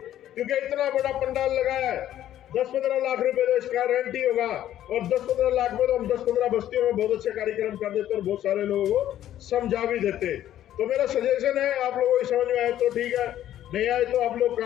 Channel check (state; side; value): quieter; right; 12.0 dB